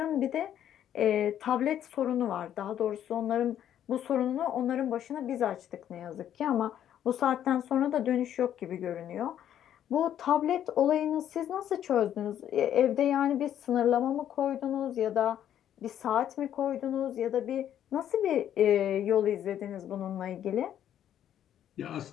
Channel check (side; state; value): right; quieter; 10.5 dB